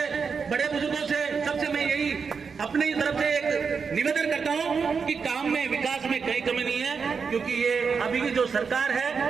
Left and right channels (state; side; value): quieter; left; 5.6 dB